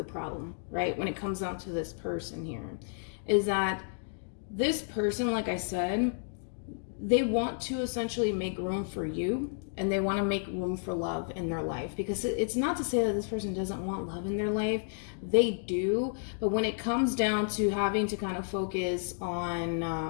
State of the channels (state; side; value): silent; right; digital silence